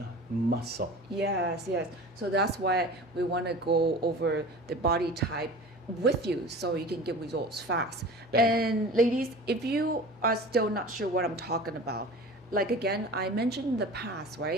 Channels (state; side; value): normal; both; correlation 0.38